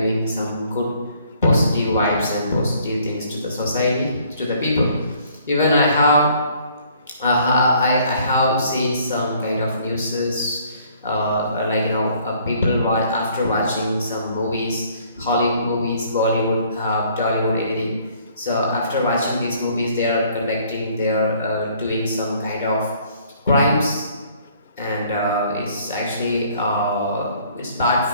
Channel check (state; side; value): inverted; both; correlation -0.61